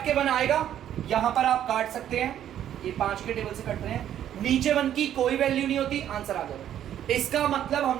के 1 आएगा, यहां पर आप काट सकते हैं, ये 5 के टेबल से कट रहे हैं, नीचे 1 की कोई वैल्यू नहीं होती, आंसर आ जाएगा। इसका मतलब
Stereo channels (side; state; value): left; quieter; 10.8 dB